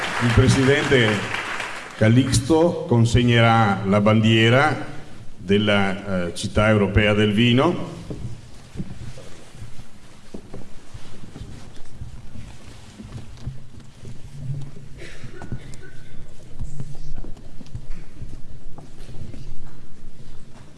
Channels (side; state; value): both; identical; correlation 1.00